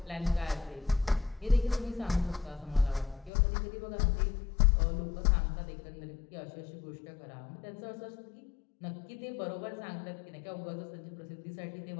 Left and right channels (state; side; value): drops out; right; at 3.3 s